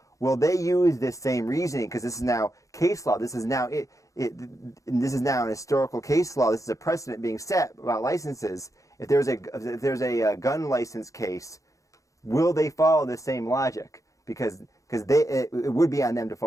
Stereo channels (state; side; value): late; right; 0.16 ms